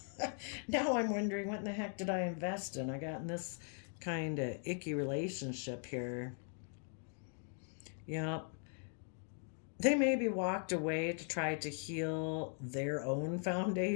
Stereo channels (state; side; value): silent; right; 51 dB below the other